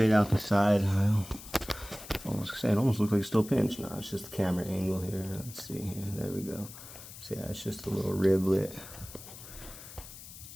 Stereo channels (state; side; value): noise; left; hiss, 15 dB below the sound